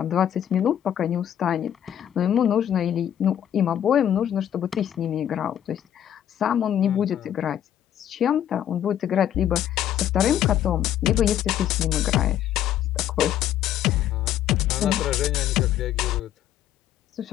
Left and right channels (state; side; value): quieter; right; 10.7 dB